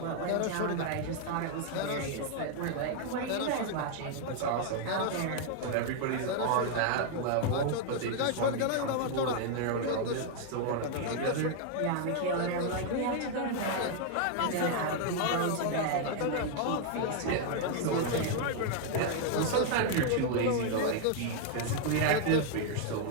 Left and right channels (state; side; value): different; both; correlation 0.00